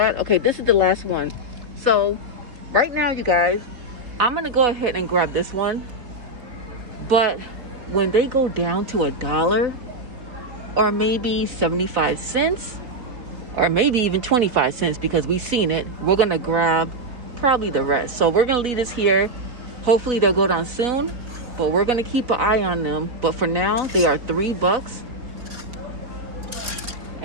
Okay, this is the last one. So right now, you guys, I'm gonna go ahead and grab this one. But when they go down to $1 or maybe 75 cents or maybe even 25 cents because we've seen it, we're gonna grab probably the rest. So we're gonna leave this here. Hopefully they'll go down soon, but we're gonna keep an eye on them. But for now, they are $3.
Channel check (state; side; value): late; left; 4.1 ms